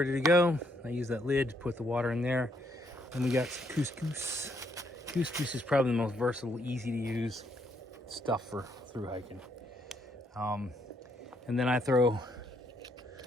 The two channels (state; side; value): normal; both; correlation 0.72